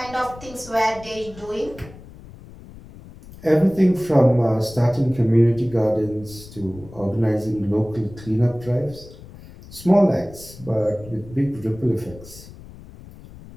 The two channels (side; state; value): left; noise; rumble, 18 dB below the sound